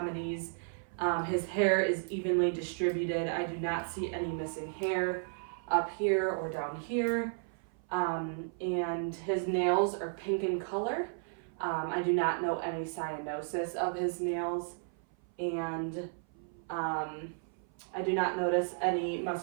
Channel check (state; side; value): silent; left; 55 dB below the other